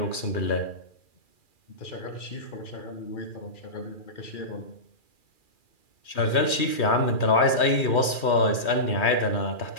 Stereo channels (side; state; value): right; late; 2.4 ms